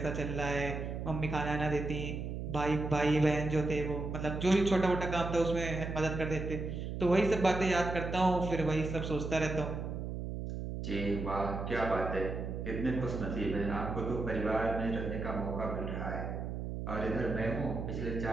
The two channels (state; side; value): noise; right; hum, 5 dB below the sound